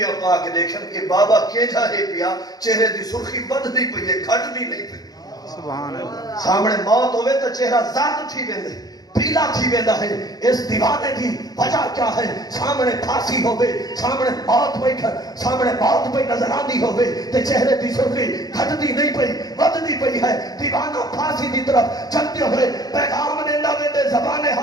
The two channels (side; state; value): right; late; 0.19 ms